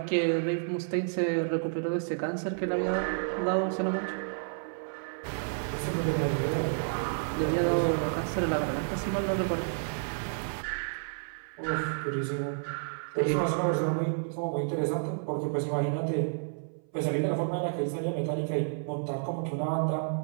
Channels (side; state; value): left; silent; 57 dB below the other